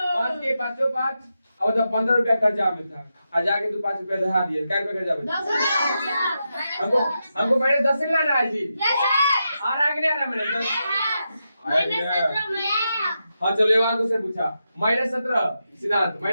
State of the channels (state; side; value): inverted; both; correlation -0.87